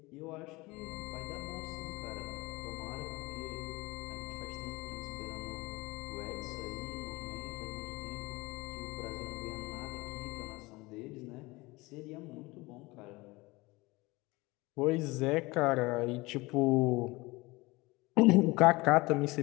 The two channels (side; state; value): right; quieter; 22.5 dB